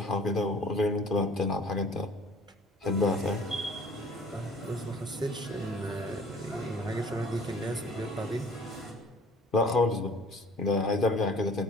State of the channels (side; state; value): both; normal; correlation 0.50